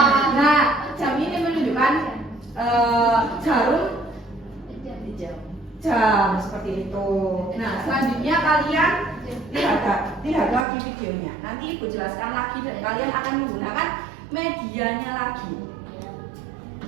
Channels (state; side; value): drops out; left; at 10.7 s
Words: Nah, jam ini menunjukkan jarum jam seperti itu. Nah, selanjutnya kalian lihat lagi videonya. Nanti Ibu jelaskan lagi dan kalian akan menggunakan medianya lagi.